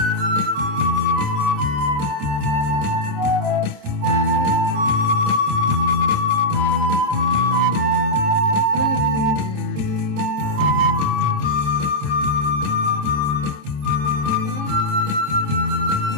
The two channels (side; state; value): left; late; 27 ms